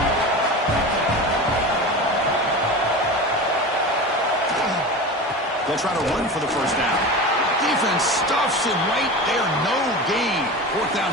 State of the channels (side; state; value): both; normal; correlation 0.29